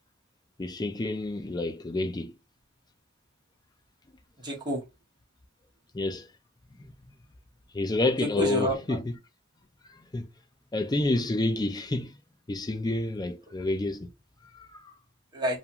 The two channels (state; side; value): normal; both; correlation 0.61